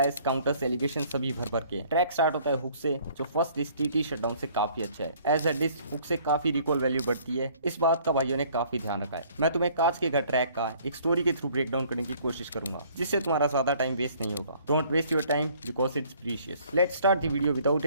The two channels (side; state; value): both; inverted; correlation -0.58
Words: काउंटर्स एलिगेशन सभी भर भर के। ट्रैक स्टार्ट होता है हुक से, जो फर्स्ट डिस्क टीटी शटडाउन से काफी अच्छा है। एज अ डिस्क हुक से काफी रिकॉल वैल्यू बढ़ती है, इस बात का भाइयों ने काफी ध्यान रखा है। मैं तुम्हें कांच के घर ट्रैक का एक स्टोरी के थ्रू ब्रेकडाउन करने की कोशिश करूंगा, जिससे तुम्हारा ज्यादा टाइम वेस्ट नहीं होगा। Don't waste your time because it's precious. Let's start the video without